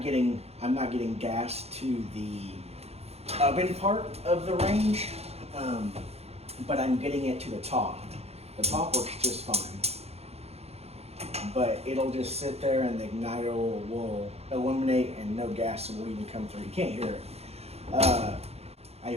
getting gas to the oven part of the range, but I'm getting it to the top. The top works just fine, but it'll just sit there and the igniter will illuminate and no gas will even come through. You can't hear it. I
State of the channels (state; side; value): late; left; 0.30 ms